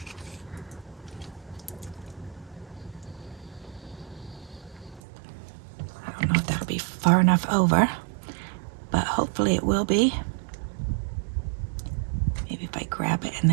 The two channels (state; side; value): drops out; left; at 5.0 s